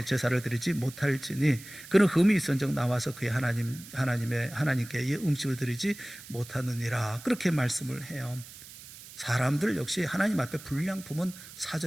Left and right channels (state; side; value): noise; right; hiss, 17 dB below the sound